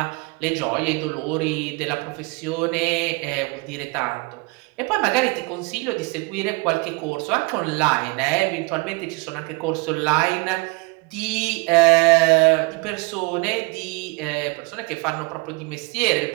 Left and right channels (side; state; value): left; quieter; 27.7 dB